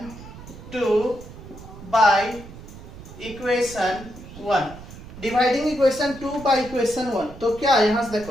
2 by equation 1, dividing equation 2 by equation 1। तो क्या यहां से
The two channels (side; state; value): right; noise; rumble, 15 dB below the sound